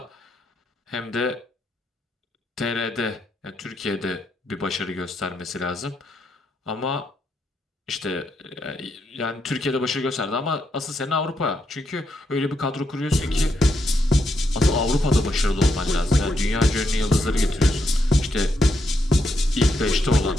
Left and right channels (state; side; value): normal; both; correlation 0.80